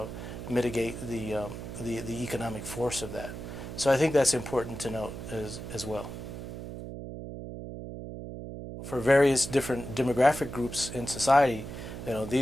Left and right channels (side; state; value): right; noise; hum, 9 dB below the sound